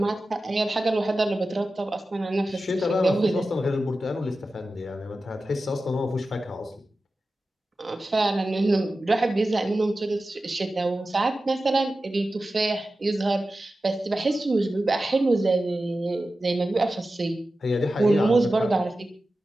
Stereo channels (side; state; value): both; normal; correlation 0.94